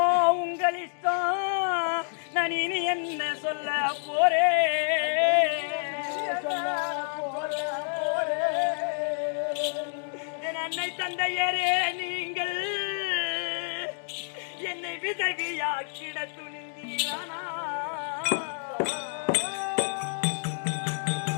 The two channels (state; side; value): silent; right; digital silence